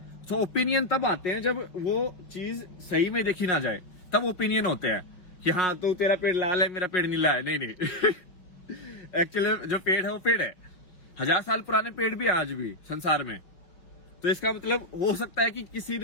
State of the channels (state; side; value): late; right; 5.5 ms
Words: तो ओपिनियन तब आते हैं जब वो चीज सही में देखी ना जाए, तब ओपिनियन होते हैं कि हाँ तो तेरा पेड़ लाल है, मेरा पेड़ नीला है। नहीं एक्चुअली जो पेड़ है वो पेड़ है। 1000 साल पुराने पेड़ भी आज भी संसार में। तो इसका मतलब हो सकता है कि किसी